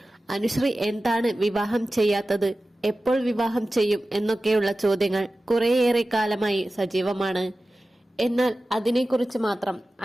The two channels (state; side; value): normal; both; correlation 0.95